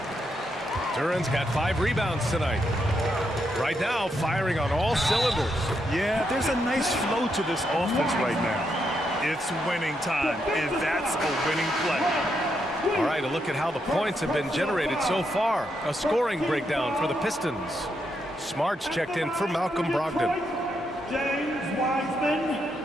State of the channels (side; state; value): both; normal; correlation 0.80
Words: Duren's got 5 rebounds tonight. Right now, firing on all cylinders. Yeah, there's a nice flow to this offense right now. It's winning time, and that's a winning play. All right, a look at how the points have been generated so far. A scoring breakdown for the Pistons. Smart's checked in for Malcolm Brogdon. James Wiseman,